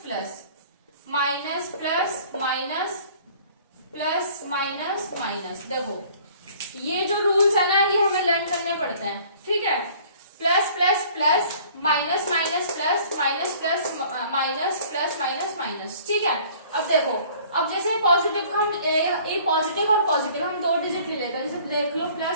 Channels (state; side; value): inverted; both; correlation -0.53